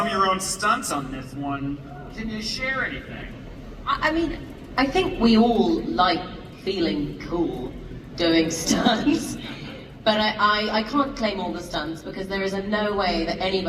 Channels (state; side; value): identical; both; correlation 1.00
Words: of your own stunts on this one. Can you share anything? I mean, I think we all like feeling cool doing stunts. But I can't claim all the stunts because there is no way that any of